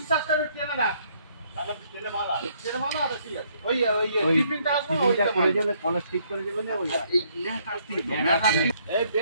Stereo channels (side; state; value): both; inverted; correlation -0.68